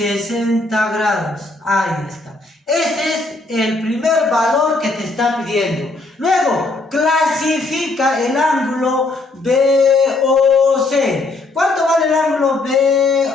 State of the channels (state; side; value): quieter; right; 3.2 dB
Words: grados. Ahí está. Este es el primer valor que te está pidiendo. Luego, clasifica el ángulo BOC. ¿Cuánto vale el ángulo